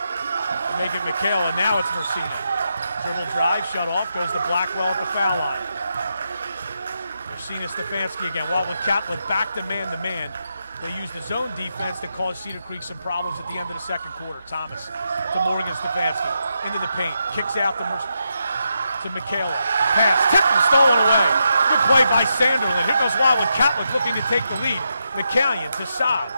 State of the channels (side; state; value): both; inverted; correlation -0.84